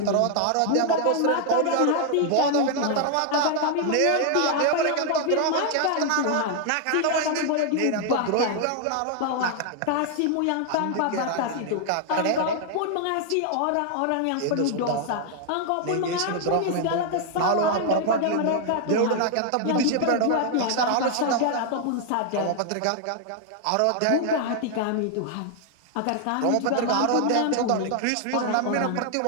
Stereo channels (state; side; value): different; both; correlation 0.00